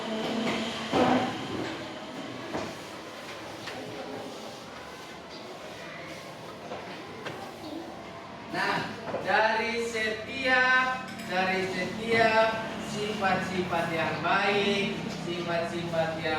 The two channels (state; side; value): identical; both; correlation 1.00